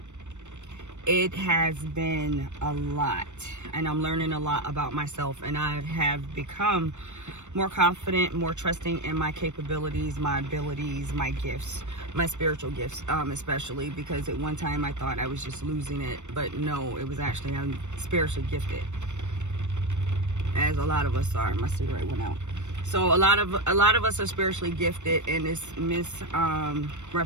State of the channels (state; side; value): late; left; 0.84 ms